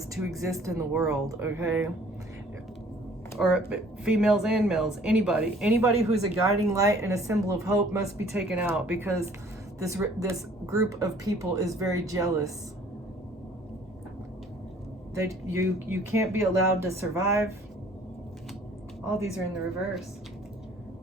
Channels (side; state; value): both; normal; correlation 0.55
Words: to exist in the world, okay? Or females and males, anybody who's a guiding light and a symbol of hope must be taken out, because this group of people is very jealous. You can't be allowed to survive. All these are in the reverse.